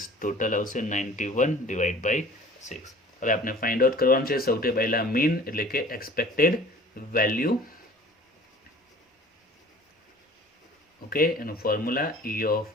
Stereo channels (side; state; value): both; normal; correlation 0.47